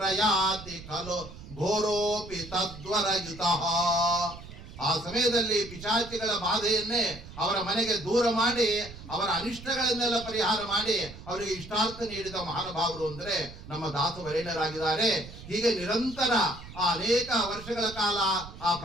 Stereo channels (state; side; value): noise; right; rumble, 15 dB below the sound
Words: ಖಲು ಘೋರೋಪಿ ತದ್ವರಯುತಃ. ಆ ಸಮಯದಲ್ಲಿ ಪಿಶಾಚಿಗಳ ಬಾಧೆಯನ್ನೇ ಅವರ ಮನೆಗೆ ದೂರ ಮಾಡಿ, ಅವರ ಅನಿಷ್ಟಗಳನ್ನೆಲ್ಲ ಪರಿಹಾರ ಮಾಡಿ ಅವರಿಗೆ ಇಷ್ಟಾರ್ಥ ನೀಡಿದ ಮಹಾನುಭಾವರು ಅಂದ್ರೆ ನಮ್ಮ ದಾಸವರೇಣ್ಯರಾಗಿದ್ದಾರೆ. ಹೀಗೆ ನಿರಂತರ ಅನೇಕ ವರ್ಷಗಳ ಕಾಲ ಆ